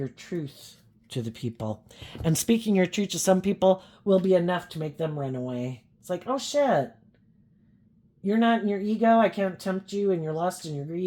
truth to the people. And speaking your truth to some people will be enough to make them run away. It's like, oh shit, you're not in your ego. I can't tempt you in your lust and your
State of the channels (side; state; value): both; identical; correlation 1.00